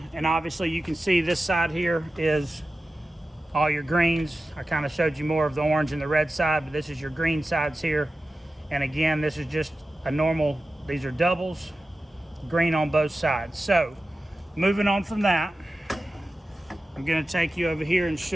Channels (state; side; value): normal; both; correlation 0.94